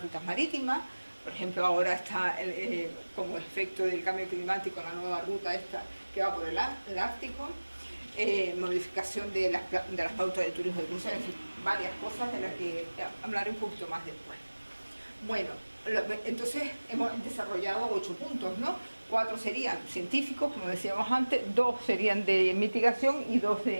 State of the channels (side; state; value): both; inverted; correlation -1.00